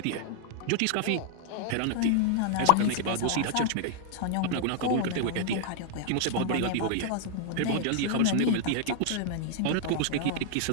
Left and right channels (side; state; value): both; different; correlation 0.00